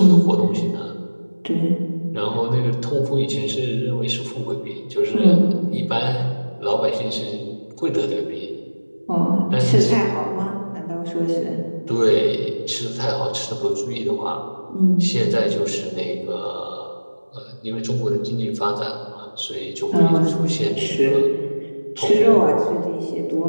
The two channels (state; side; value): inverted; both; correlation -1.00